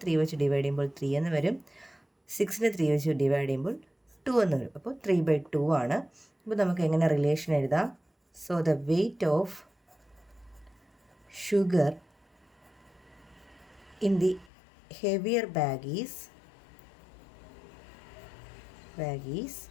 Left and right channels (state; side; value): drops out; right; at 14.5 s